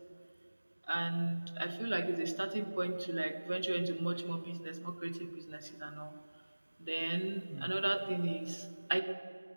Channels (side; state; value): both; inverted; correlation -1.00